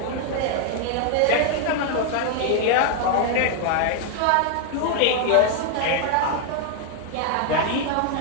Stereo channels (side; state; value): both; different; correlation 0.00